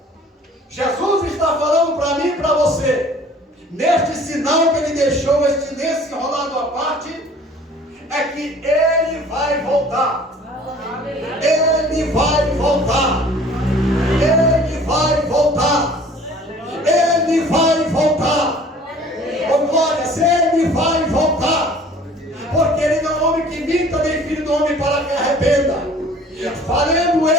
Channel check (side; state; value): both; normal; correlation 0.50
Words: Jesus está falando para mim e para você, neste sinal que ele deixou, este lenço enrolado à parte, é que ele vai voltar. Ele vai voltar. Ele vai voltar. Ele vai voltar. Oh glórias, ele vai voltar. Porque ele não é homem que minta, nem filho do homem para que arrependa. Falando